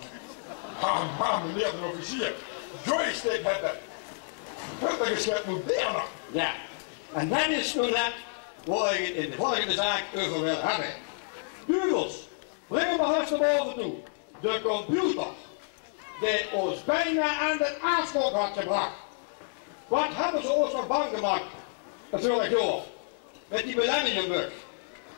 Ah, meneer de officier. Joystick hebben. Dat is het moderne. Ja. En dat is nu net waar ik het in de volgende zaak over wil hebben. Dugels, breng hem maar eens naar boven toe. De computer, die ons bijna aan de aanslag had gebracht. Wat hebben ze ons nog bang gemaakt? Natuurlijk door. Met die millenniumbug.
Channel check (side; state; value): right; silent; digital silence